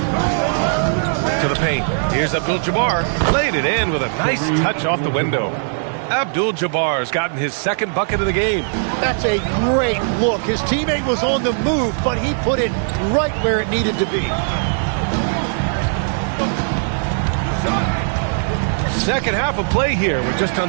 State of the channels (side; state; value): left; silent; digital silence